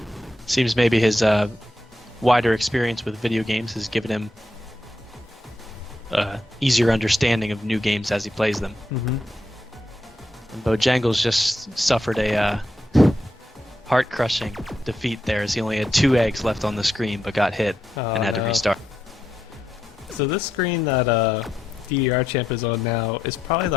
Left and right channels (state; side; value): normal; both; correlation 0.83